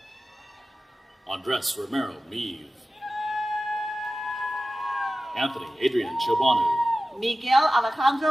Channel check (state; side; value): normal; both; correlation 0.95